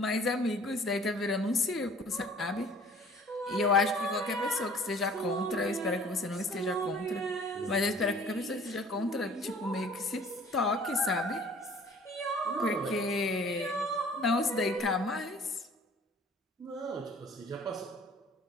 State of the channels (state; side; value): normal; both; correlation 0.51